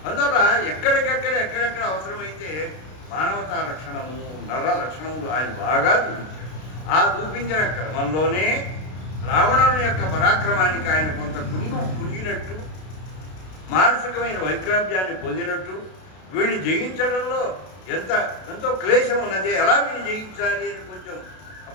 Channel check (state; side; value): late; right; 32 ms